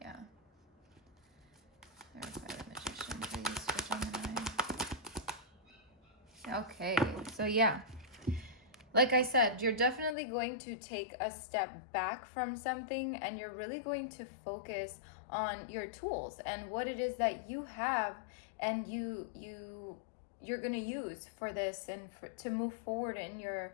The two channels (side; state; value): right; drops out; at 10.2 s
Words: Yeah. Clarify the Magician, please, for Gemini. Okay, so yeah. Like I said, you're definitely going to take a step back from something, and you're really going to focus on your tools and what it is that you have, and you're going to use for this and to move forward in your